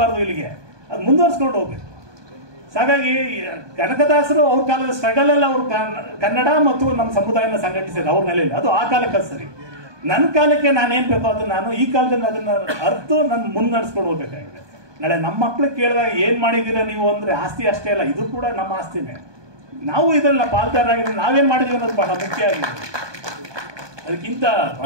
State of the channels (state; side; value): late; left; 1.2 ms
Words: ಇಲ್ಲಿಗೆ ಅದು ಮುಂದುವರ್ಸ್ಕೊಂಡು ಹೋಗ್ಬೇಕು. ಹಾಗಾಗಿ ಕನಕದಾಸರು ಅವ್ರ ಕಾಲದ ಸ್ಟ್ರಗಲ್ ಎಲ್ಲ ಅವ್ರು ಕನ್ನಡ ಮತ್ತು ನಮ್ಮ ಸಮುದಾಯನ ಸಂಘಟಿಸಿದ್ರು ಅವ್ರ ನೆಲೆಯಲ್ಲಿ. ಅದು ಆ ಕಾಲಕ್ಕೆ ಸರಿ. ನನ್ನ ಕಾಲಕ್ಕೆ ನಾನೇನ್ ಬೇಕೋ ಅದು ನಾನು ಈ ಕಾಲದಲ್ಲಿ ಅದನ್ನ ಅರ್ತು ನಾನು ಮುನ್ನಡೆಸ್ಕೊಂಡು ಹೋಗ್ಬೇಕಾಗಿದೆ. ನಾಳೆ ನಮ್ಮ ಮಕ್ಳಿಗೆ ಕೇಳಿದಾಗ ಏನ್ ಮಾಡಿದೀರಾ ನೀವು ಅಂದ್ರೆ ಆಸ್ತಿ ಅಷ್ಟೇ ಅಲ್ಲ, ಇದು ಕೂಡ ನಮ್ಮ ಆಸ್ತಿನೇ. ನಾವು ಇದನ್ನ ಪಾಲ್ದಾರಾಗಿದ್ರೆ ನಾವೇನ್ ಮಾಡಿದೀವಿ ಅನ್ನೋದು ಬಹಳ ಮುಖ್ಯ ಆಗಿದೆ. ಅದಕ್ಕಿಂತ